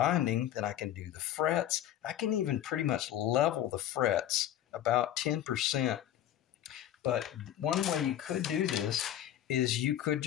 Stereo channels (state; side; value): quieter; right; 11.6 dB